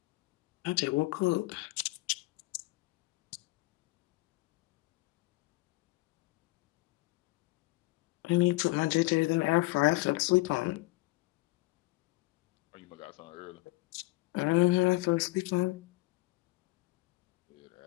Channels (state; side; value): quieter; right; 21.1 dB